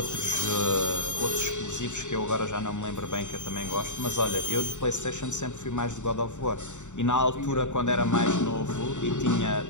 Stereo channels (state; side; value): late; right; 0.84 ms